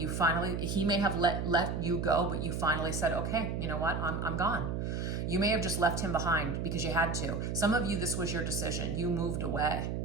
may have let you go, but you finally said, okay, you know what? I'm gone. You may have just left him behind because you had to. Some of you, this was your decision. You moved away,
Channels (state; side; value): noise; right; hum, 2 dB below the sound